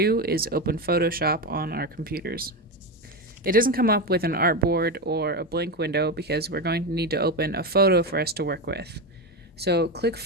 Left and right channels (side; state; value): both; normal; correlation 0.15